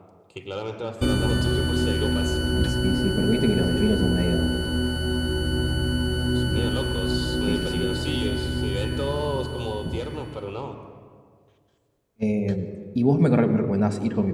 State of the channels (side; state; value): both; identical; correlation 1.00